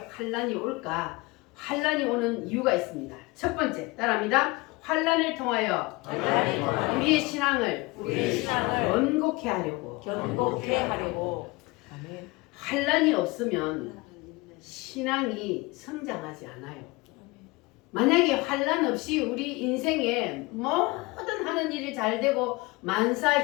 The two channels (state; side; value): quieter; right; 23.6 dB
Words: 올까? 환난이 오는 이유가 있습니다. 첫 번째, 따라합니다. 환난을 통하여 우리의 신앙을 견고케 하려고. 견고케 하려고. 아멘. 환난이 없으면 신앙이 성장하지 않아요. 만약에 환난 없이 우리 인생에 모든 하는 일이 잘 되고 만사